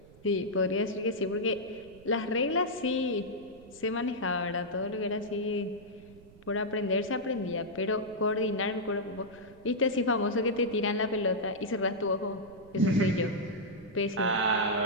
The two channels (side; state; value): right; noise; rumble, 23 dB below the sound